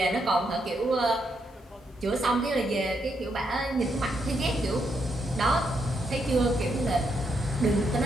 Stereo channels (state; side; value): normal; both; correlation 0.79